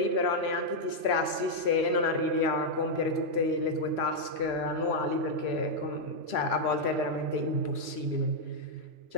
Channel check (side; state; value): left; late; 3.0 ms